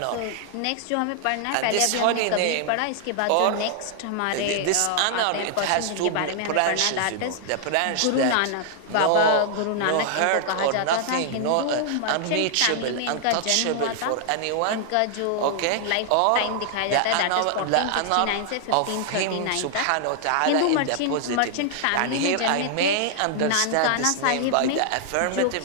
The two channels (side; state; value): both; different; correlation -0.01